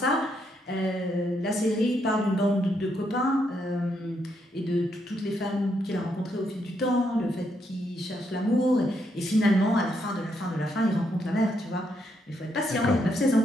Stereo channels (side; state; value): both; normal; correlation 0.77